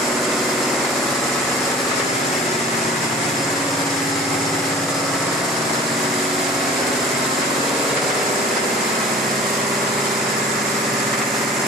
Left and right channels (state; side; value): normal; both; correlation 0.45